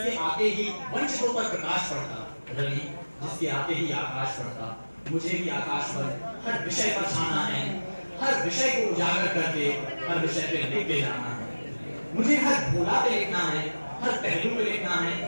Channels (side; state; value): both; inverted; correlation -1.00